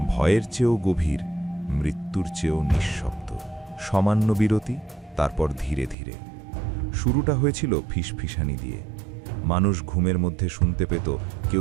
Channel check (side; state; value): left; drops out; at 6.0 s